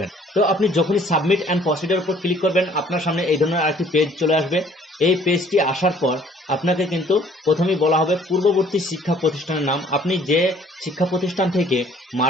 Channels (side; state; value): both; normal; correlation 0.57